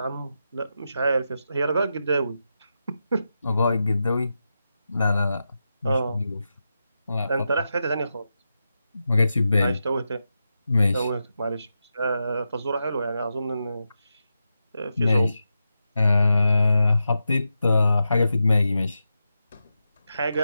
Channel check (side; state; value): both; inverted; correlation -0.89